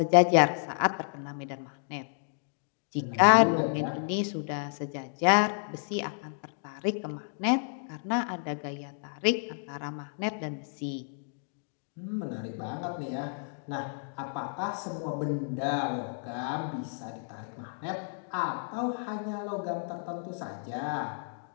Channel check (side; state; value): right; silent; digital silence